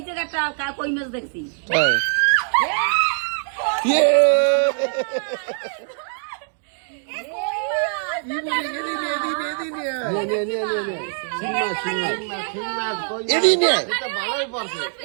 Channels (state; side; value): silent; left; digital silence